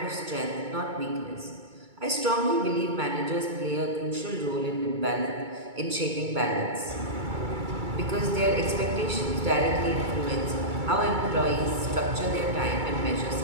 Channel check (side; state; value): left; late; 2.3 ms